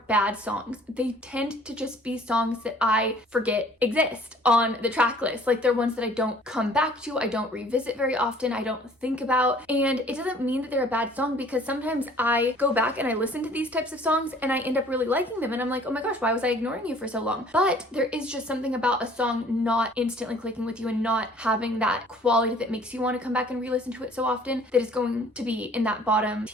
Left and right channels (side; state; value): both; normal; correlation 0.54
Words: songs. They tend to just be songs that I forget exist on the track list. Like, they're ones that I don't come back to, I don't revisit very often, I don't think about. And it doesn't mean that they're a bad song, because sometimes I go back and I listen to these types of songs and I end up really liking them, and I'm like, oh my gosh, why was I ignoring you for so long? But there is just something about a song not instantly clicking with you and not having that quality that makes you want to come back and re-listen to it so often that is going to be in that bottom